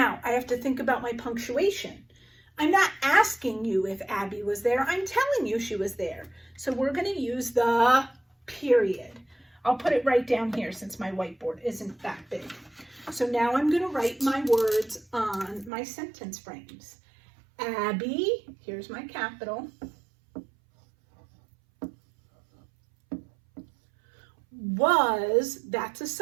I have to think about my punctuation. I'm not asking you if Abby was there. I'm telling you she was there. So we're going to use the period. I'll put it right down here since my whiteboard isn't that big. So now I'm going to write my words on my sentence frames. Abby, here's my capital, was, that's a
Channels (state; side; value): drops out; left; at 15.7 s